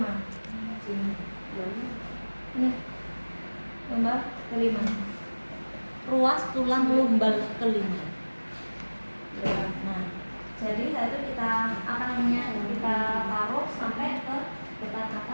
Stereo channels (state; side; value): inverted; both; correlation -1.00